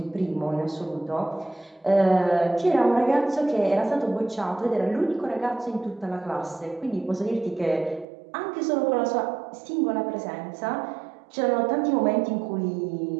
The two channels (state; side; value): drops out; left; at 8.1 s